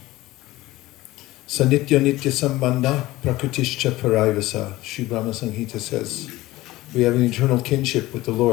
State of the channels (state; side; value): quieter; right; 18.0 dB